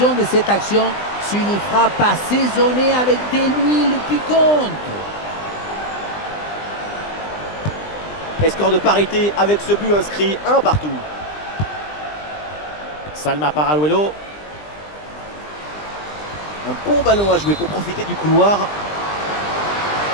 de cette action, c'est une frappe assaisonnée avec de l'huile piquante. Et score de parité avec ce but inscrit, 1 partout. Salma Paraluelo. Un bon ballon à jouer pour profiter du couloir.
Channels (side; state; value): right; late; 20 ms